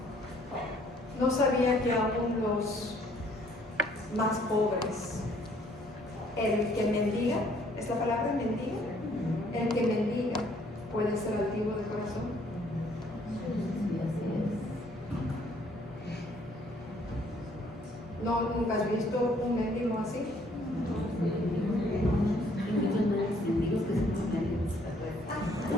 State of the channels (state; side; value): normal; both; correlation 0.63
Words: No sabía que aún los más pobres, el que mendiga, ¿es la palabra mendiga? El que mendiga puede ser altivo de corazón. ¿No, nunca has visto un mendigo así?